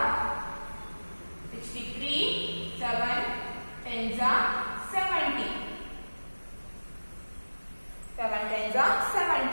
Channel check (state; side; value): inverted; both; correlation -1.00